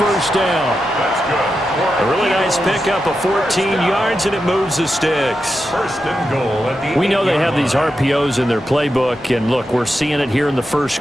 down. That's good. A really nice pickup of 14 yards, and it moves the sticks. 1st and goal at the We know they have these RPOs in their playbook, and look, we're seeing it here in the first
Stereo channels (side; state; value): both; normal; correlation 0.88